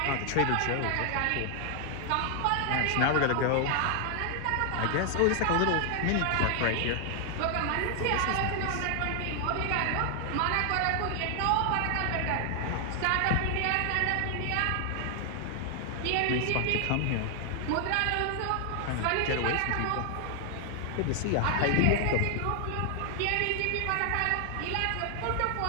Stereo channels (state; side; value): different; both; correlation 0.00